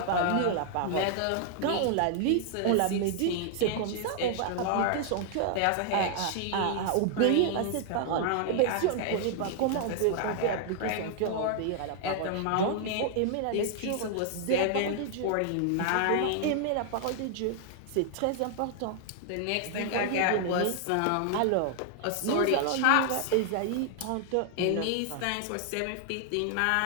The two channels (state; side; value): different; both; correlation 0.00